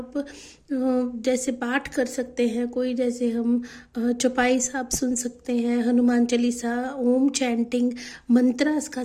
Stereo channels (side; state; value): both; identical; correlation 1.00